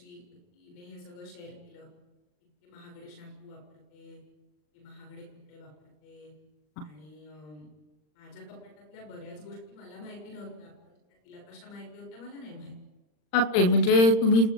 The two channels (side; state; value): right; late; 39 ms